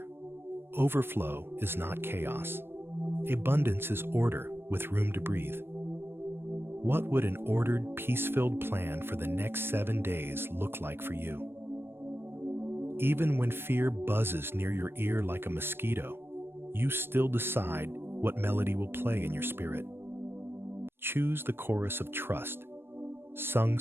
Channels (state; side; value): late; left; 0.11 ms